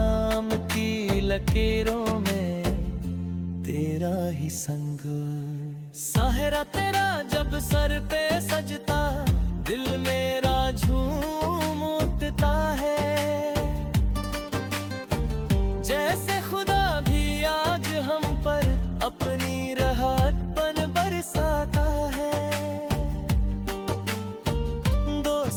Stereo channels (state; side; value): identical; both; correlation 1.00